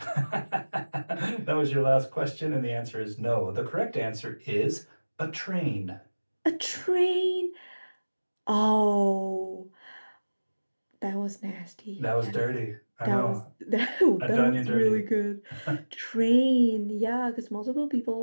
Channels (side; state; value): both; inverted; correlation -1.00